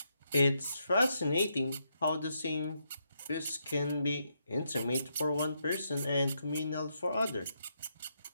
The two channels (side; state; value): both; inverted; correlation -0.80